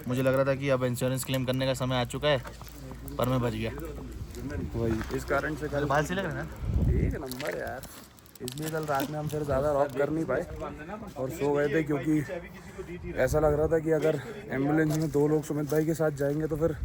मुझे लग रहा था कि अब इंश्योरेंस क्लेम करने का समय आ चुका है, पर मैं बच गया। वही इस कारण से कल बाल से लग रहा है ना। एक नंबर यार, इसलिए कल रात में हम फिर ज़्यादा रॉक कर नहीं पाए और सो गए थे, क्योंकि ऐसा लग रहा था कि अगर एम्बुलेंस में 2 लोग सुमित भाई के साथ जाएंगे तो फिर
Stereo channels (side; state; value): both; identical; correlation 1.00